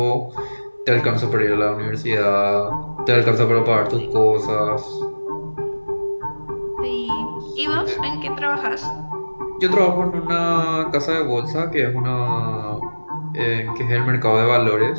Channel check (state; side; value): inverted; both; correlation -1.00